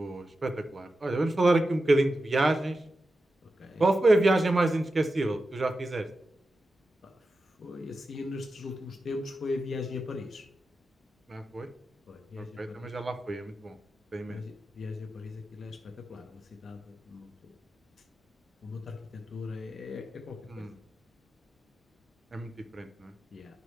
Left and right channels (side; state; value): both; normal; correlation 0.91